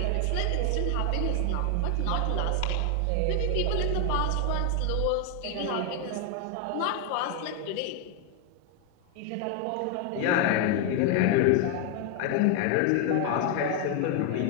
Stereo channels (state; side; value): different; both; correlation 0.01